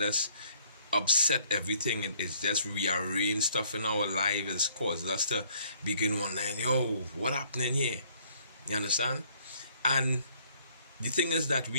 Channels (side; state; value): both; inverted; correlation -0.62